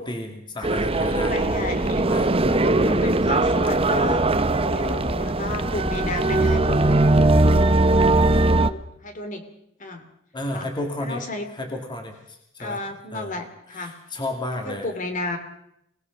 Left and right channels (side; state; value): both; normal; correlation 0.57